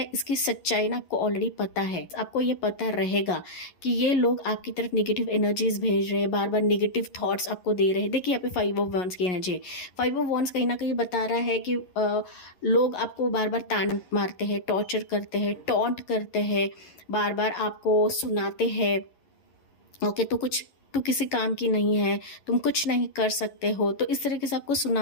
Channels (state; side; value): late; right; 11 ms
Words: इसकी सच्चाई ना आपको ऑलरेडी पता है, आपको ये पता रहेगा कि ये लोग आपकी तरफ निगेटिव एनर्जीज भेज रहे हैं, बार बार निगेटिव थॉट्स आपको दे रहे हैं। देखिए यहाँ पे 5 ऑफ वॉन्ड्स की एनर्जी है। 5 ऑफ वॉन्ड्स कहीं ना कहीं बता रहा है कि लोग आपको बार बार ताना मारते हैं, टॉर्चर करते हैं, टॉन्ट करते हैं, बार बार आपको सुनाते हैं, ओके। तो तू किसी काम की नहीं है, तुम कुछ नहीं कर सकते हो, तो इस तरीके से आपको